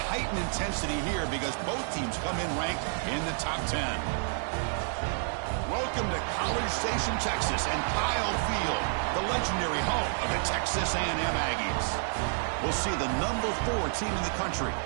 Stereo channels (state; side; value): silent; left; 58 dB below the other